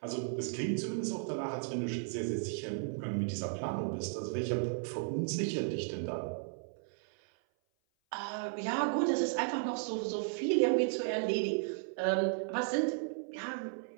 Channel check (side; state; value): left; silent; 55 dB below the other